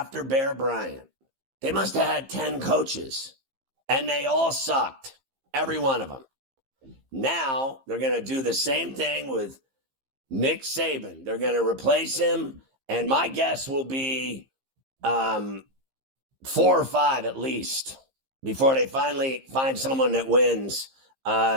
Bear Bryant, they must have had 10 coaches, and they all sucked, every one of them. Now they're going to do the same thing with Nick Saban. They're going to replace him, and my guess will be 4 or 5 at least, before they finally find someone that wins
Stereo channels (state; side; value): late; left; 15 ms